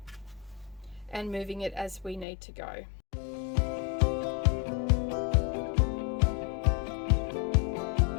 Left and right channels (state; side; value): drops out; right; at 2.2 s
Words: and moving it as we need to go.